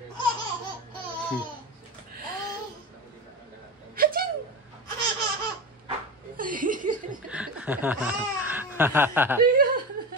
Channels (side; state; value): both; normal; correlation 0.23